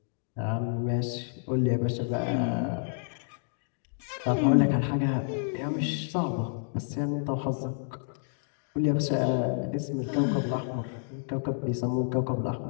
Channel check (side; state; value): right; silent; digital silence